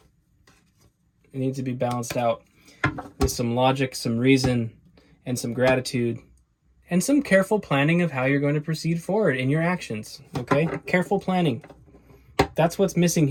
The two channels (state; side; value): identical; both; correlation 1.00